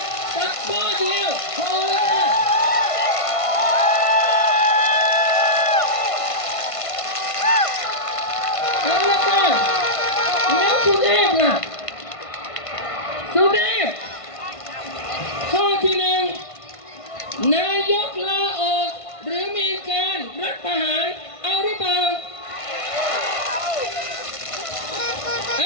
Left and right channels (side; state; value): right; late; 1.5 ms